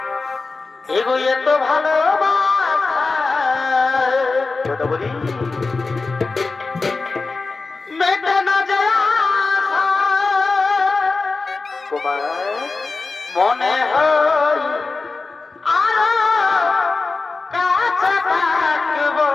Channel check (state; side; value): quieter; right; 3.9 dB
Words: এগো এত ভালোবাসা গোদাবরী, মেটে না যায় আশা, কুমার, মনে হয় আরো কাছে থাকবো,